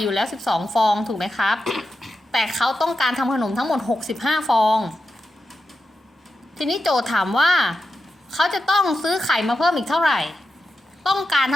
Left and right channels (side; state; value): both; normal; correlation 0.89